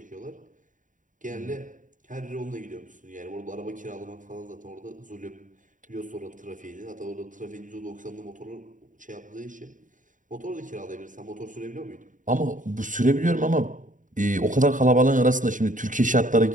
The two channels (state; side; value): late; left; 0.38 ms